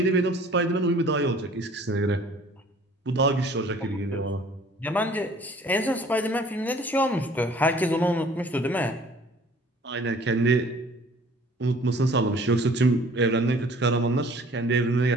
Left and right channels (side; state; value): both; normal; correlation 0.52